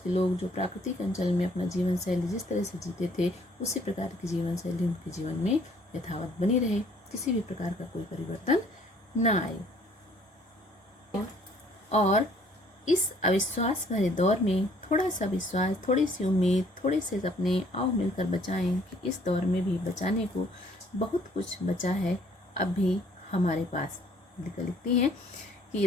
लोग जो प्राकृतिक अंचल में अपना जीवन शैली जिस तरह से जीते थे, उसी प्रकार की जीवन शैली उनके जीवन में यथावत बनी रहे, किसी भी प्रकार का कोई परिवर्तन न आए। और इस अविश्वास भरे दौर में थोड़ा सा विश्वास, थोड़ी सी उम्मीद, थोड़े से सपने आओ मिलकर बचाएं कि इस दौर में भी बचाने को बहुत कुछ बचा है अब भी हमारे पास। लिखती हैं कि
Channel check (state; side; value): normal; both; correlation 0.60